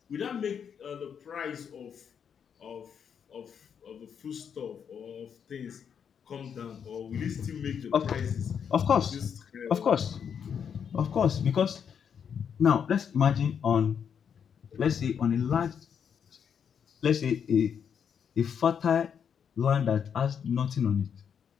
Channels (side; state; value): right; quieter; 7.5 dB